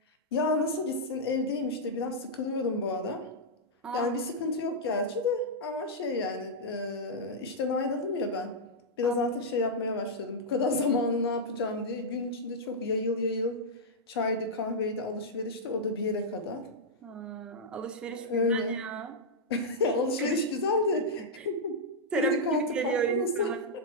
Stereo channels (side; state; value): both; normal; correlation -0.07